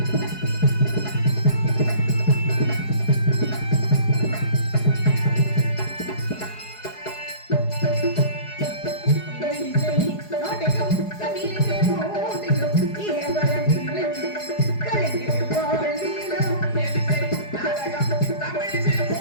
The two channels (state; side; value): late; right; 4.8 ms